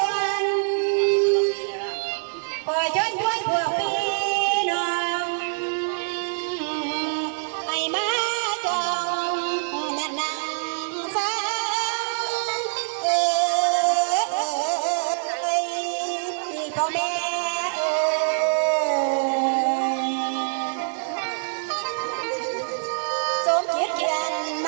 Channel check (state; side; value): silent; left; digital silence